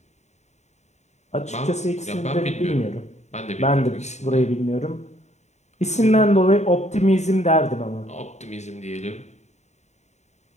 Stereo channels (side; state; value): right; late; 0.33 ms